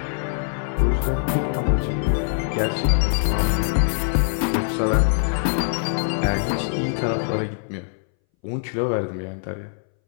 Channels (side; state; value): right; silent; 62 dB below the other